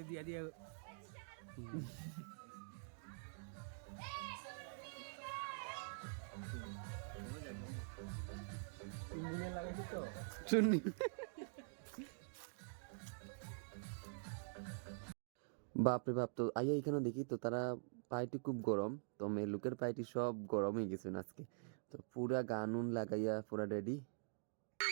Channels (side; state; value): left; silent; digital silence